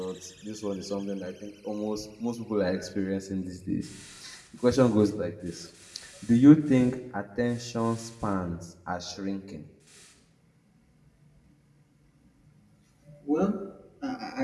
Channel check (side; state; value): both; identical; correlation 1.00